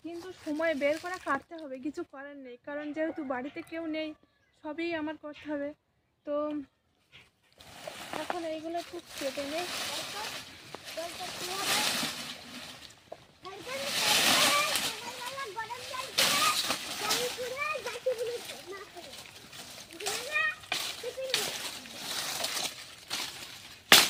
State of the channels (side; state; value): both; identical; correlation 1.00